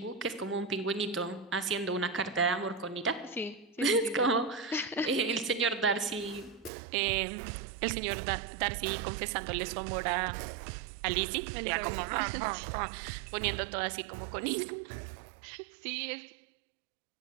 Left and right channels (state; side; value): drops out; left; at 6.7 s